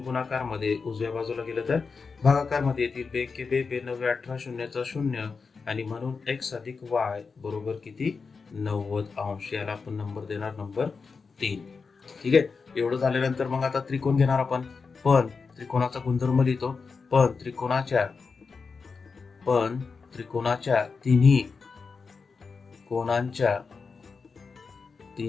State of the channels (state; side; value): quieter; right; 4.9 dB